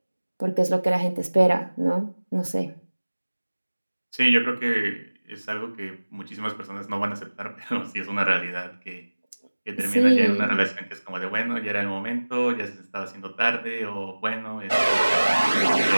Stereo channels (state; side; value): inverted; both; correlation -1.00